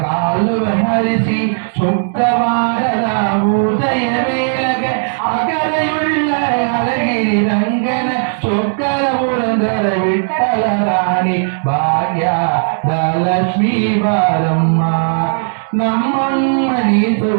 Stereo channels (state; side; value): silent; left; digital silence